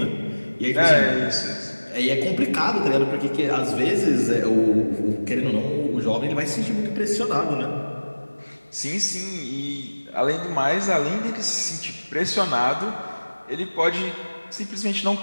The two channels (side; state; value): both; inverted; correlation -1.00